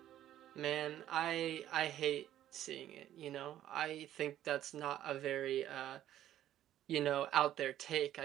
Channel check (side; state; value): left; quieter; 12.2 dB